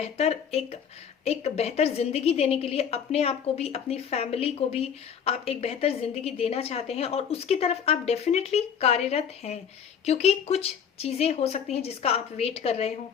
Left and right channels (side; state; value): right; quieter; 7.6 dB